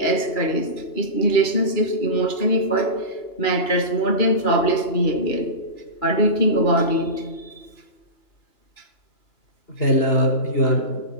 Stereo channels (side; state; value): right; late; 2.9 ms